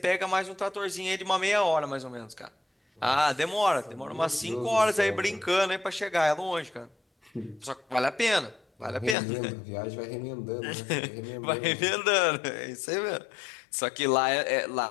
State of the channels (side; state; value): right; drops out; at 9.2 s